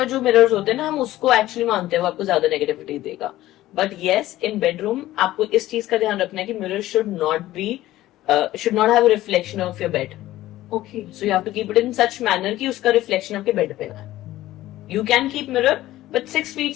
जो मिरर्स होते हैं ना, हम उसको एक्चुअली मानते हैं वो आपको ज्यादा नेगेटिविटी देगा. बट येस, इन बेडरूम आपको इस चीज का ध्यान रखना है कि mirror should not have reflection of your bed. Okay. So you have to keep it in such manner कि उसका रिफ्लेक्शन आपके बेड पे आए. You can keep mirror but 6 feet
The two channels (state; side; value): quieter; right; 15.4 dB